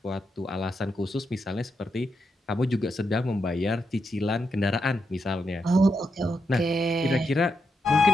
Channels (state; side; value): normal; both; correlation 0.83